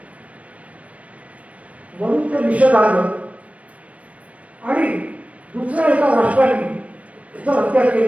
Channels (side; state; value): left; late; 0.066 ms